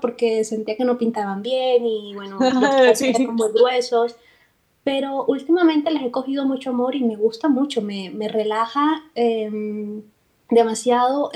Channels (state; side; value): identical; both; correlation 1.00